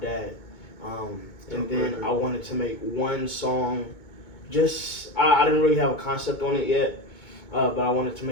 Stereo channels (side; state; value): right; late; 2.2 ms